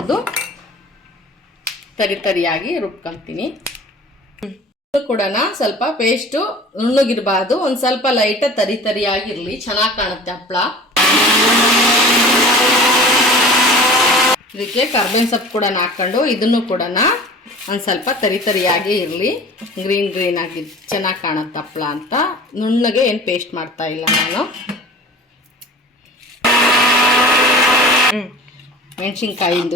ತರಿಯಾಗಿ ರುಬ್ಕೊತೀನಿ. ಕೂಡ ಸ್ವಲ್ಪ ಪೇಸ್ಟು ನುಣ್ಣಗಿರಬಾರ್ದು, ಒಂದು ಸ್ವಲ್ಪ ಲೈಟ್ ತರಿಯಾಗಿರಲಿ, ಚೆನ್ನಾಗಿ ಕಾಣುತ್ತೆ ಹಪ್ಪಳ. ಇದಕ್ಕೆ ಕರ್ಬೇವಿನ ಸೊಪ್ಪು ಕೂಡ ಹಾಕ್ಕೊಂಡು ಇದನ್ನು ಕೂಡ ಒಂದು ಸ್ವಲ್ಪ ತರಿಯಾಗಿ ಇರಲಿ, ಗ್ರೀನ್ ಆಗಿ ಚೆನ್ನಾಗಿ ಕಾಣುತ್ತೆ ಹಪ್ಪಳ ಅಂತ. ನುಣ್ಣಗೆ ಏನು ಪೇಸ್ಟ್ ಮಾಡ್ತಾ ಇಲ್ಲ ನಾನು.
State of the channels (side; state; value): both; normal; correlation 0.41